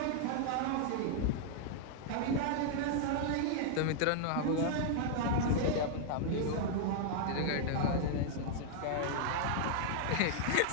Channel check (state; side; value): different; both; correlation -0.01